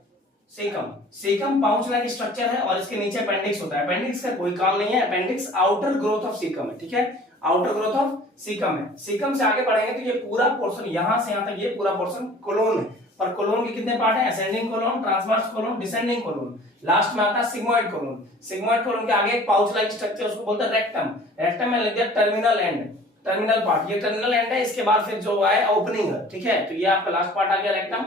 caecum, caecum pouch like structure है और इसके नीचे अपेंडिक्स होता है, अपेंडिक्स का कोई काम नहीं है। Appendix outer growth of caecum है। ठीक है, आउटर ग्रोथ ऑफ सीकम है। सीकम से आगे बढ़ेंगे तो ये पूरा पोर्शन, यहां से यहां तक ये पूरा पोर्शन कोलोन है। पर कोलोन के कितने पार्ट हैं, ascending colon, transverse colon, descending colon. Last में आता है सिग्मोइड कोलोन। सिग्मोइड कोलोन के आगे एक पाउच लाइक स्ट्रक्चर, उसको बोलते हैं रेक्टम। रेक्टम में लग गया टर्मिनल एंड, टर्मिनल पार्ट, ये टर्मिनल एंड है। इसके बाद फिर जो है ओपनिंग है। ठीक है, तो ये आपका लास्ट पार्ट आ गया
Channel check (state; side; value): normal; both; correlation 0.48